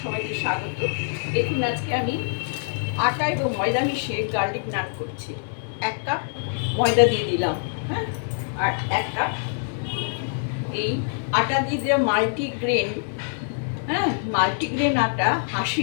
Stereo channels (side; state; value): right; silent; 62 dB below the other